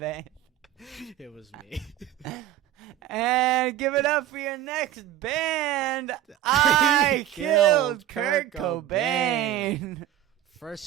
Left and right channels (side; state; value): left; quieter; 12.7 dB